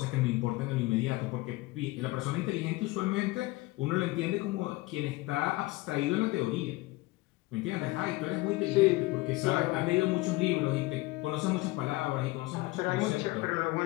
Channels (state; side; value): quieter; right; 20.7 dB